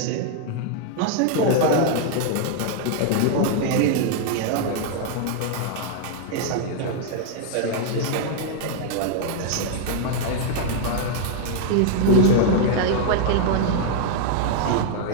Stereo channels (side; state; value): both; different; correlation 0.00